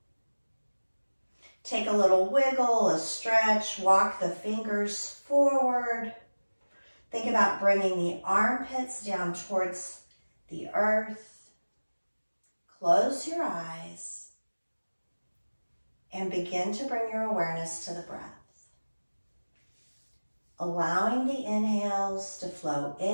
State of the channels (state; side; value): inverted; both; correlation -1.00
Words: Take a little wiggle, a stretch, walk the fingers forward. Think about bringing the armpits down towards the earth. Close your eyes and begin to bring your awareness to the breath. Allowing the inhales to flow in